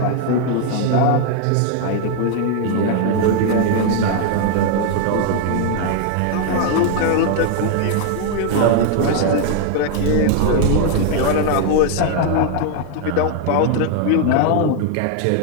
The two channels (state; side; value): different; both; correlation 0.00